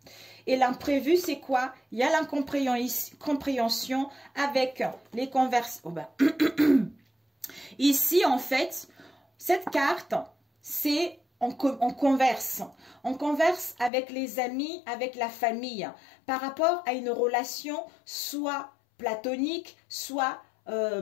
Et l'imprévu, c'est quoi? Il y a l'incompréhension avec les conversations. Ici, en fait, cette carte, c'est on converse. On converse avec les amis, avec la famille, par rapport à une relation soit platonique, soit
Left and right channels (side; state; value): right; drops out; at 13.9 s